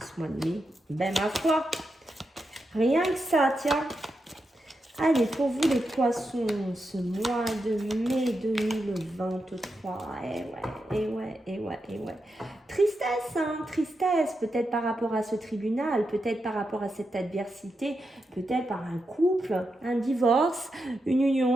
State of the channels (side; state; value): both; normal; correlation 0.87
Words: mois de mai? Ben ma foi, rien que ça, tiens. Allez, pour vous les poissons, ce mois de mai 2023, eh ouais. Tristesse, hein, tristesse, peut-être par rapport à ce tribunal, peut-être par rapport à cette adversité, peut-être par un couple, un divorce, une